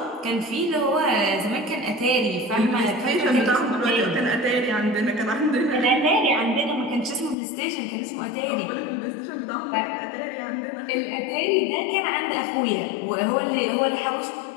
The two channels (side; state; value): right; drops out; at 7.4 s